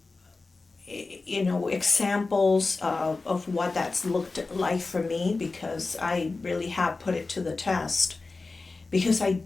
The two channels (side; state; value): right; quieter; 3.7 dB